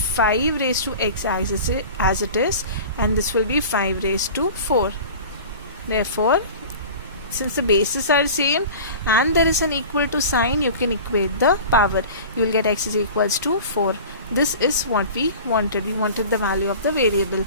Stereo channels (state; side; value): inverted; both; correlation -0.38